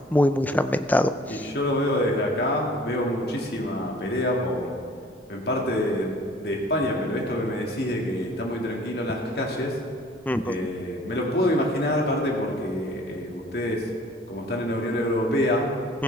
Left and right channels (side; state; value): both; normal; correlation 0.52